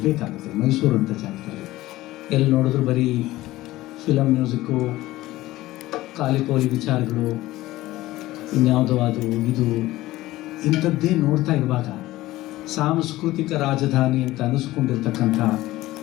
ಮೈಸೂರು ಅಂತ ಜಾಗದಲ್ಲಿ ಎಲ್ಲಿ ನೋಡಿದ್ರು ಬರೀ ಫಿಲಮ್ ಮ್ಯೂಸಿಕ್ಕು, ಕಾಲಿಪೋಲಿ ವಿಚಾರಗಳು, ಇನ್ಯಾವುದೋ ಅದು ಇದು ಇಂಥದ್ದೇ ನೋಡ್ತಾ ಇರುವಾಗ ಸಾಂಸ್ಕೃತಿಕ ರಾಜಧಾನಿ ಅಂತ ಅನ್ನಿಸ್ಕೊಂಡಿರ್ತಕ್ಕಂಥ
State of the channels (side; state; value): right; quieter; 17.1 dB